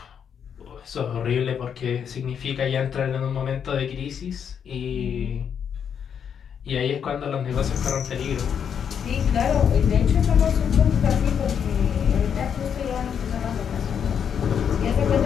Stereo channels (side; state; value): right; quieter; 7.8 dB